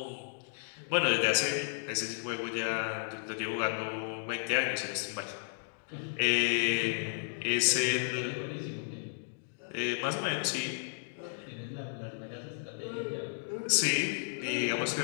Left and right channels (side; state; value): right; silent; digital silence